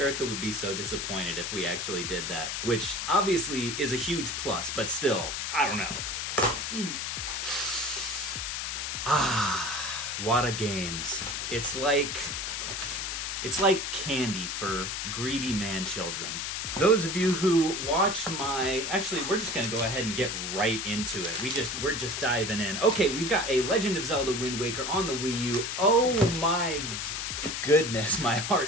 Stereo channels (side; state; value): left; noise; hiss, 3 dB below the sound